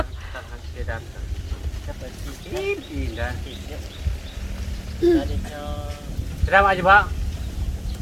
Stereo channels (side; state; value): both; identical; correlation 1.00